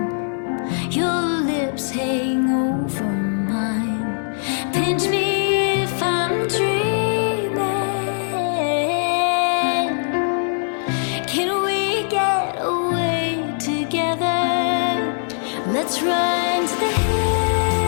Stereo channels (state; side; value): silent; right; digital silence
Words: Your lips hang over mine. Pinch me if I'm dreaming. Can we get away together? Let's run to the hills